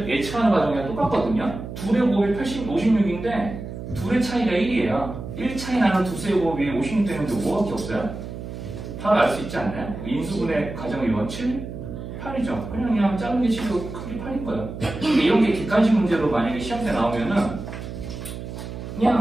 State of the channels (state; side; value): noise; right; hum, 9 dB below the sound